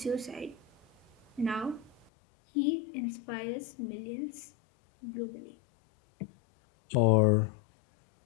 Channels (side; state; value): right; drops out; at 2.1 s